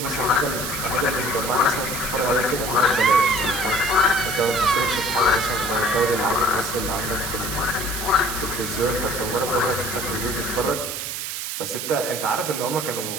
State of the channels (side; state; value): right; noise; hiss, 5 dB below the sound